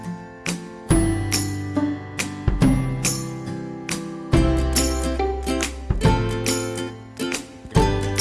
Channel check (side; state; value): both; identical; correlation 1.00